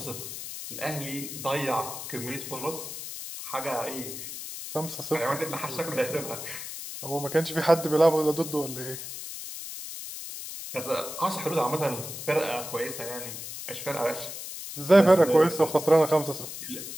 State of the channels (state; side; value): noise; left; hiss, 9 dB below the sound